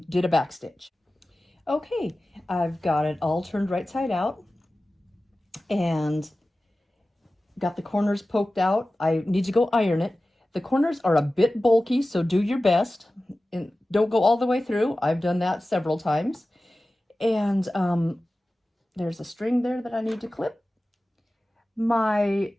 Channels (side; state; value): both; normal; correlation 0.96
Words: did a back stitch. Okay, I've got it all turned right side out, and got the corners poked out. I need to go iron it. The corners are a bit bulky, so do your best. And don't go all the way through. I've done that several times. And there's a string there that I need to clip. My